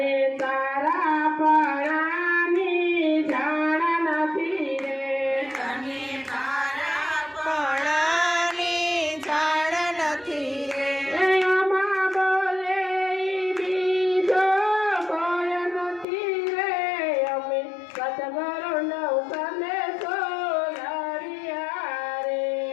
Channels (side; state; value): right; drops out; at 16.1 s